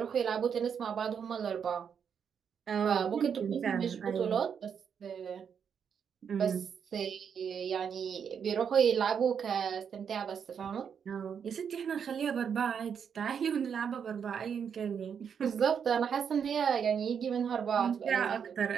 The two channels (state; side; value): quieter; left; 7.3 dB